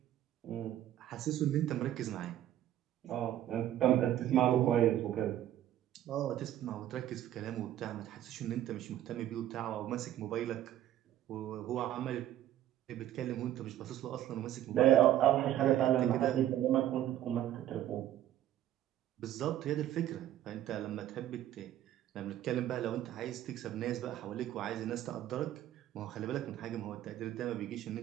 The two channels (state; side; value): quieter; left; 12.3 dB